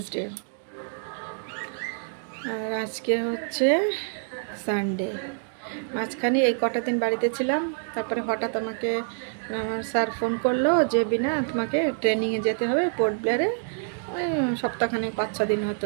আর আজকে হচ্ছে সানডে। মাঝখানে এই কটা দিন বাড়িতে ছিলাম, তারপরে হঠাৎ আমাকে আমার স্যার ফোন করলো যে বিনা তোমাকে ট্রেনিংয়ে যেতে হবে পোর্ট ব্লেয়ারে, ওই সপ্তাহখানেক 5-6 দিন হতে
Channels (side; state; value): left; silent; 59 dB below the other